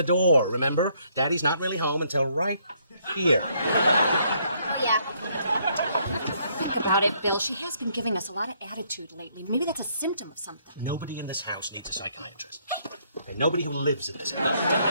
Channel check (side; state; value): both; inverted; correlation -0.69